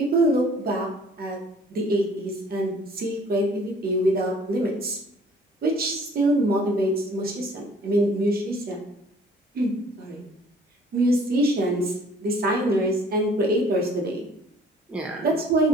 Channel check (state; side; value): normal; both; correlation 0.55